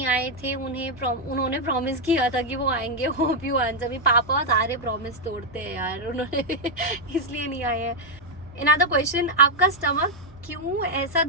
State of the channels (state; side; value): normal; both; correlation 0.00